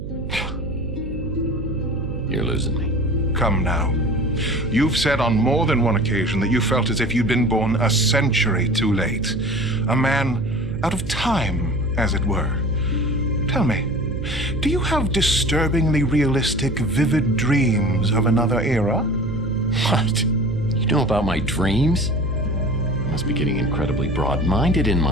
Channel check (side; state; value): right; noise; hum, 8 dB below the sound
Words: You're losing me. Come now. You've said on more than one occasion that you felt as if you'd been born a century too late. A man out of time, as it were. Tell me, do you have disturbingly realistic, vivid dreams of another era? What? You know about my dreams? I must be getting incredibly broad-minded in